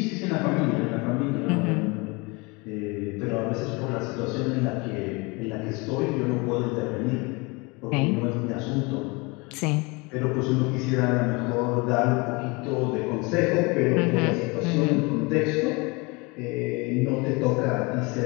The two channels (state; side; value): quieter; right; 27.3 dB